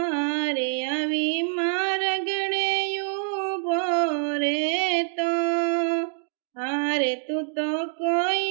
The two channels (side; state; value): left; silent; digital silence